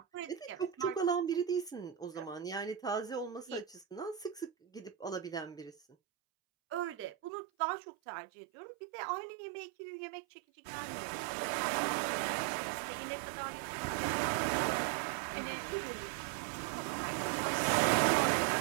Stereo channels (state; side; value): drops out; left; at 7.3 s